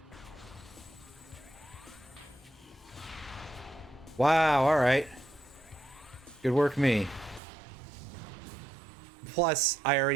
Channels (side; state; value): left; drops out; at 7.4 s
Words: Wow, alright. Good work, me. Plus, I